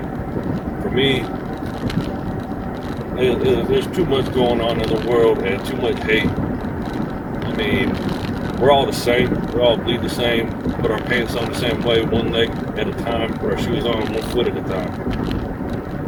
for me, there's too much going on in the world and too much hate. I mean, we're all the same. We all bleed the same. Put our pants on the same way, one leg at a time. Put our shoes on one foot at a time.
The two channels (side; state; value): both; identical; correlation 1.00